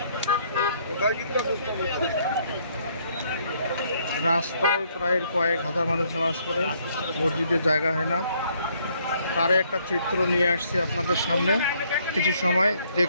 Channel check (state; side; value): inverted; both; correlation -0.67